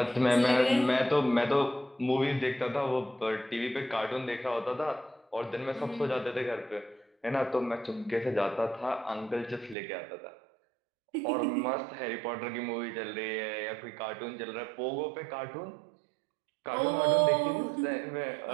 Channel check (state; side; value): drops out; left; at 9.8 s